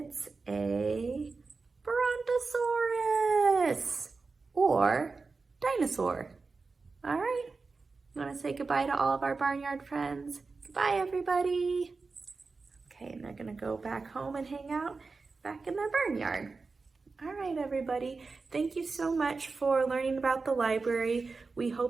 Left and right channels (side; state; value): left; quieter; 4.2 dB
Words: a brontosaurus or dinosaur. All right, you want to say goodbye to all of our barnyard friends? Goodbye, everybody. Okay, and they're gonna go back home and hang out back in their barnyard. All right, everybody. Thank you so much for learning about the library. We